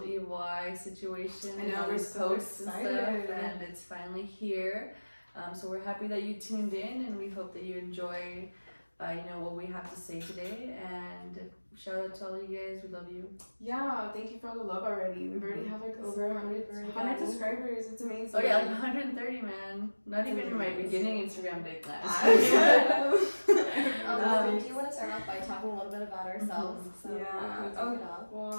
Evil Eye situation. I know, and we're these so posts excited. and stuff, and it's finally here. So we're happy that you tuned in, and we hope that you enjoy what we have to say today. And shout out to all you guys. We love you. Yeah, thank you for all the love already. We've already have like over 100 subscribers. It's amazing. Oh yeah, like 130, man. Not even in my beginning Instagram day class. We do want to start off by talking a little bit about ourselves. So Yeah. we can kick it off.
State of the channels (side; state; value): both; inverted; correlation -1.00